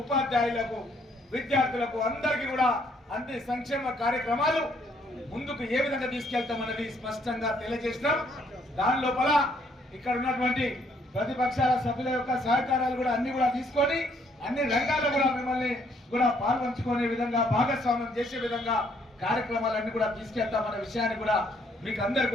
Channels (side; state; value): both; normal; correlation 0.67